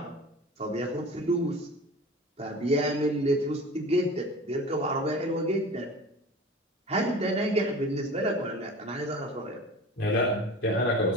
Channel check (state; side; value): normal; both; correlation 0.37